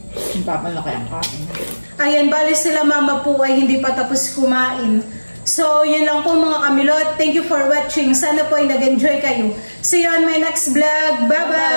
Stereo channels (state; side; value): inverted; both; correlation -1.00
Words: Mapapalaki ang kain. Ayan, bali sila mama po ay hindi pa tapos kumain. So, yun lang po mga kamilot. Thank you for watching. Sana po ay nag-enjoy kayo. See you on my next vlog.